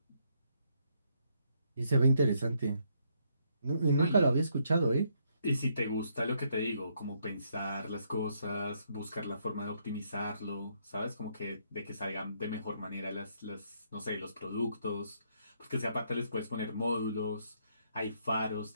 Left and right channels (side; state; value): both; inverted; correlation -0.73